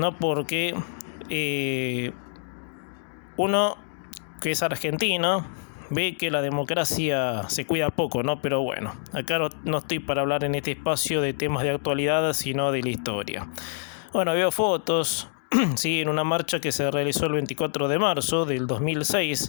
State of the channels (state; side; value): silent; right; digital silence